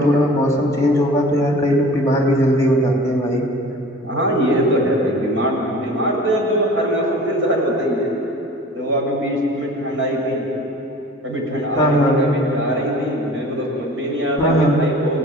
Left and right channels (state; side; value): normal; both; correlation 0.44